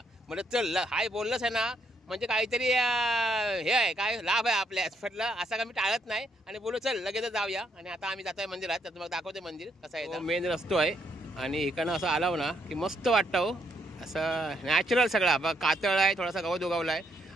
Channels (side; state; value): both; normal; correlation 0.74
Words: म्हणलं चल हाय बोललंच आहे ना, म्हणजे काहीतरी हे आहे काय लाभ आहे आपल्या. म्हटलं असं का मी टाळत नाही आणि बोललो चल लगेच जाऊया. आणि आता आम्ही जातोय मंदिरात. तर तुम्हाला दाखवते मंदिर कसं आहे. मेन रस्तो आहे आणि इकडनं असं आलाव ना की मस्त वाटतं हो. असं नॅचरल सगळा बघा, कातळ आहे, थोडासा गवत उगवला आहे